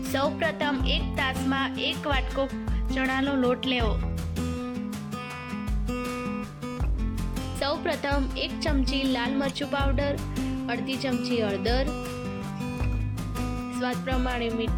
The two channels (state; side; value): identical; both; correlation 1.00